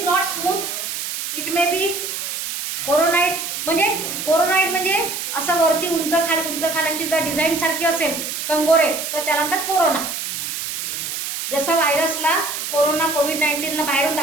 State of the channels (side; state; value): right; noise; hiss, 5 dB below the sound